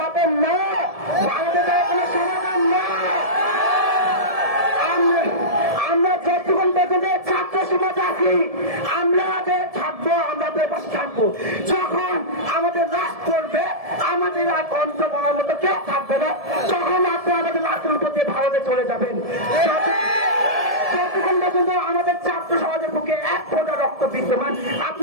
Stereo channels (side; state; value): left; late; 1.7 ms